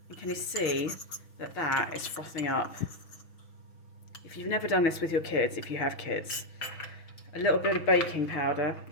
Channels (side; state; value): right; late; 6.2 ms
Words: And can you see that that is frothing up? If you've never done this with your kids, if you have kids, a little bit of baking powder